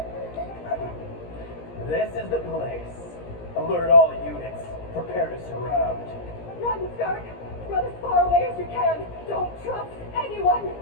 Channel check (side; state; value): right; late; 17 ms